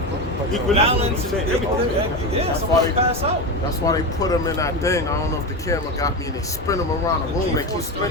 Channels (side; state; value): both; normal; correlation 0.18